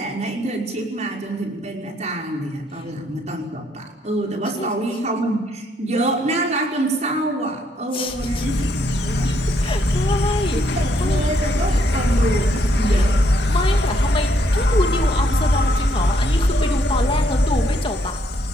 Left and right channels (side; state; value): both; normal; correlation 0.72